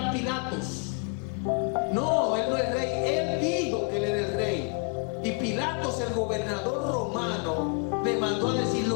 Pilatos: no, él no es rey. Él dijo que él era el rey. Y Pilatos, el gobernador romano, le mandó a decir:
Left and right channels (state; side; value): quieter; right; 36.1 dB